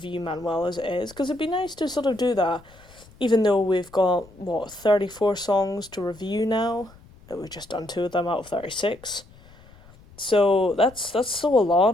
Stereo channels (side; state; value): left; noise; rumble, 24 dB below the sound